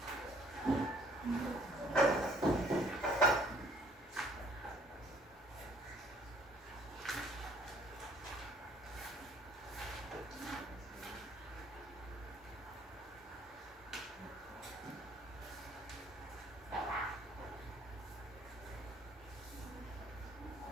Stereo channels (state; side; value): normal; both; correlation 0.60